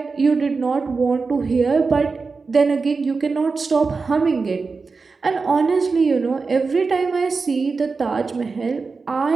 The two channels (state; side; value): quieter; left; 4.4 dB